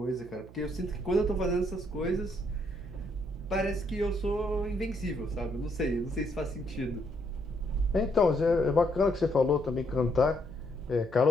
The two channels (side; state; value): right; noise; hum, 19 dB below the sound